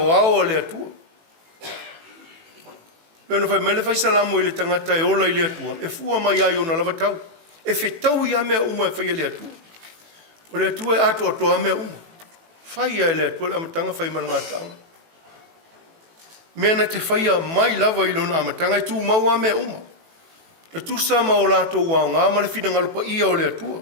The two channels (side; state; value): left; late; 18 ms